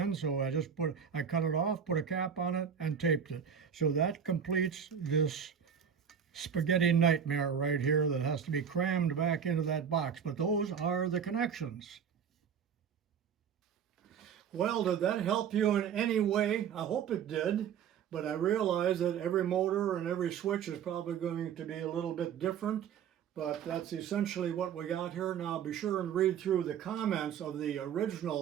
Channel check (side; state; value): left; quieter; 7.8 dB